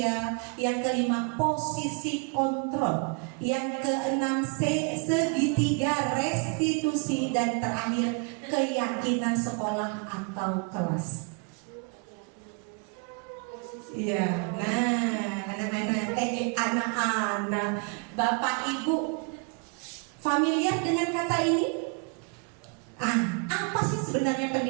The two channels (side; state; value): left; quieter; 34.0 dB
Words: Yang kelima posisi kontrol. Yang keenam segitiga restitusi. Dan terakhir keyakinan sekolah atau kelas. Iya, nah anak-anak, Bapak Ibu familiar dengan kata ini? Apa sih sebenarnya